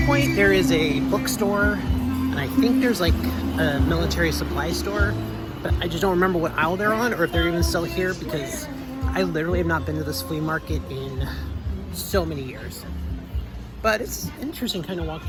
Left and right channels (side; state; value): both; identical; correlation 1.00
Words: point there is a bookstore, and I think there's, like, a military supply store, but I just don't remember what aisle they're on, or if they're even still here, because I literally have not been to this flea market in so many years. But it's interesting kind of